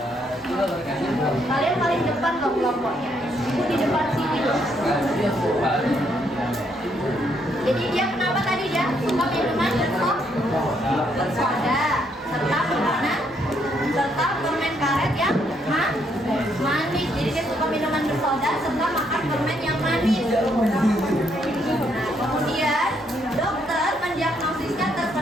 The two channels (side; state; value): both; normal; correlation 0.73